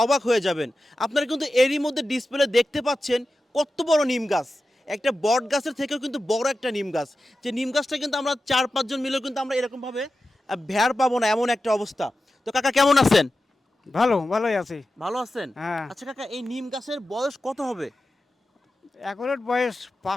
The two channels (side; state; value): both; normal; correlation 0.93